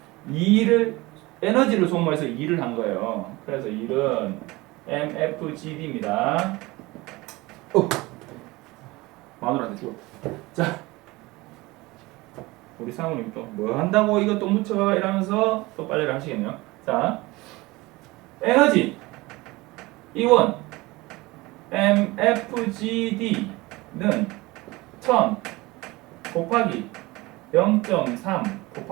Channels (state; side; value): quieter; left; 21.6 dB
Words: 에너지를 소모해서 일을 한 거예요. 그래서 일은 MFGD입니다. 마누라한테 죽어. 자, 우리 사모님 또 뭐 한다고 이거 또 묻혀 이러면서 또 빨래를 하시겠네요. 자, 에너지 이원 MFGD는 1000 곱하기 0.3